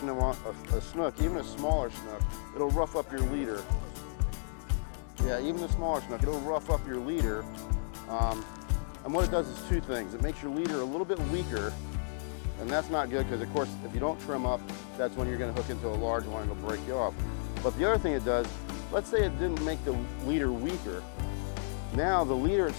them on a snook, even a smaller snook, it'll rough up your leader. Yeah, even the smaller snook, it'll rough up your leader. And what it does is two things. It makes your leader a little bit weaker, and that's not good because, of course, if you don't trim up, that's when you're going to hook into a large one and it'll break you off. But the other thing it does, let's say it didn't make the leader weaker. Now the leader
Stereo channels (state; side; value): silent; right; digital silence